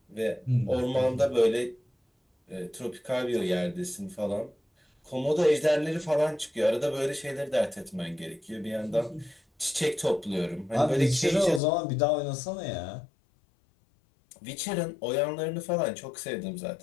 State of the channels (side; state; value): right; drops out; at 11.6 s